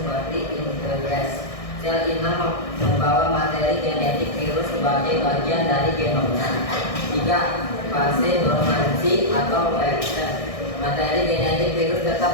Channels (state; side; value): late; right; 1.6 ms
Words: integrase. Sel inang membawa materi genetik virus sebagai bagian dari genomnya. 3. Fase dormansi atau latent. Materi genetik virus